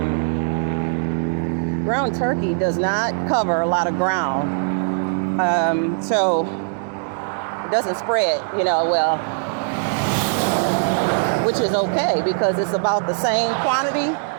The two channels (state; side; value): silent; left; digital silence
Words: ground turkey does not cover a lot of ground, so it doesn't spread, well, which is okay because it's about the same quantity